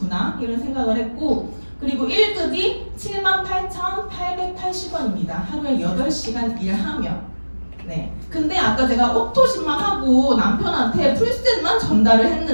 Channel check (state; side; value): inverted; both; correlation -1.00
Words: 이런 생각을 했고, 그리고 1급이 78,880원입니다. 하루에 8시간 일하면. 네. 근데 아까 제가 오토십만 하고 남편한테 풀셋만 전달을